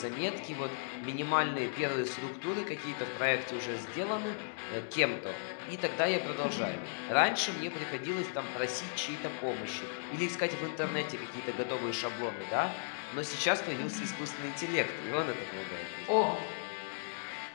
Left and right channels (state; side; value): silent; right; digital silence